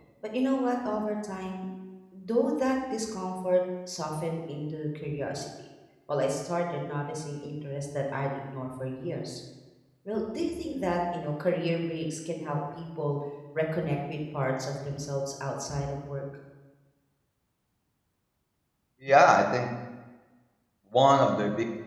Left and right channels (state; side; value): identical; both; correlation 1.00